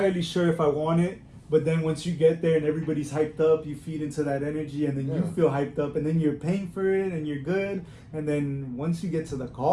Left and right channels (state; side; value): identical; both; correlation 1.00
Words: sure if I want it. But then once you get there and everybody's hyped up, you feed into that energy, and then you feel hyped up, and then you're paying for it and you're good. And then once you get to the